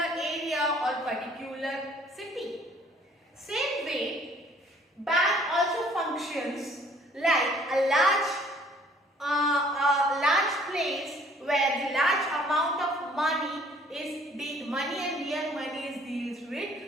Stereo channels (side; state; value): both; normal; correlation 0.58